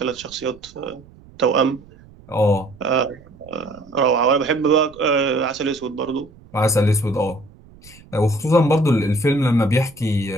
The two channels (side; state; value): right; noise; rumble, 24 dB below the sound